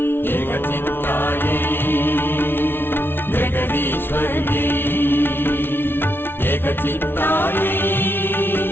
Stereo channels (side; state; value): right; late; 0.11 ms